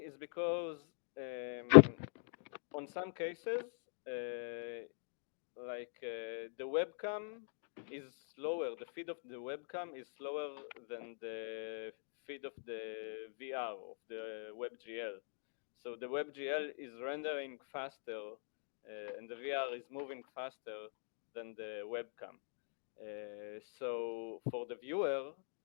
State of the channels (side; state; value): right; silent; digital silence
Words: is because on some cases, the webcam is slower, the feed of the webcam is slower than the feed of the VR, of the WebGL. So the WebGL is rendering faster and the VR is moving faster than the webcam. So for the viewer